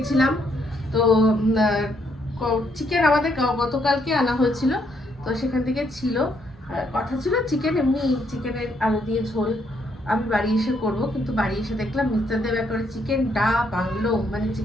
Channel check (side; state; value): both; normal; correlation 0.73